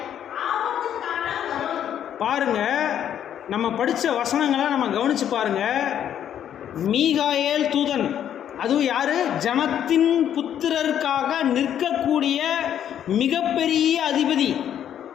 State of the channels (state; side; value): quieter; right; 9.9 dB